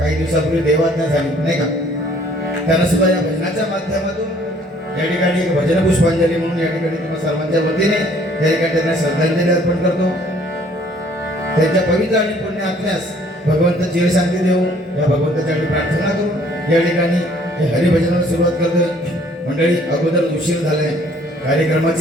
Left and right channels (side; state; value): both; normal; correlation 0.59